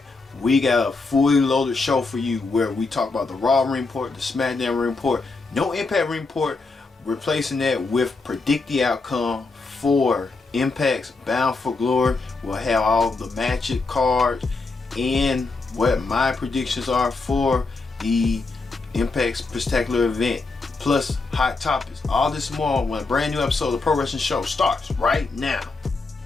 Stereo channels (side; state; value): right; quieter; 3.8 dB